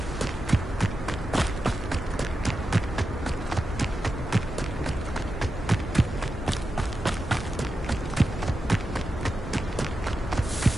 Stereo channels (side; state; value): both; normal; correlation 0.90